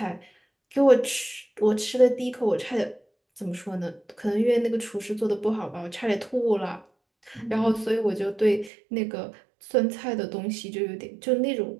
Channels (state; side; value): drops out; left; at 8.7 s